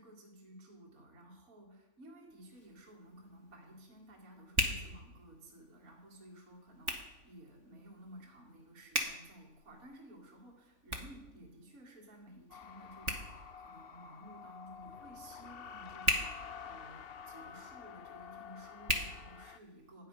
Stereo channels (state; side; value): late; left; 3.4 ms